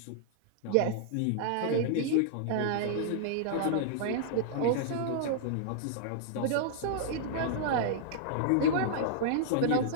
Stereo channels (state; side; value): different; both; correlation -0.01